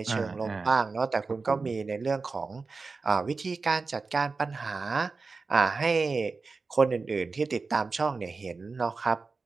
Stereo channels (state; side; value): quieter; left; 4.2 dB